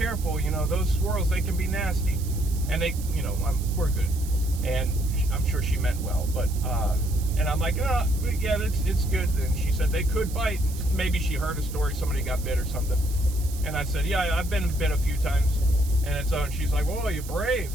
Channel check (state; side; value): noise; right; hiss, 15 dB below the sound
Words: You know, those squirrels, they can be nasty. And they, you know, we're good. And I'm sure she meant well, but, and I'm like, oh, yeah, it's good. And she said they could bite. Maybe she heard a story, somebody got bit or something. And I said, yeah, I've been bit a few times. And she's like, well, you're brave.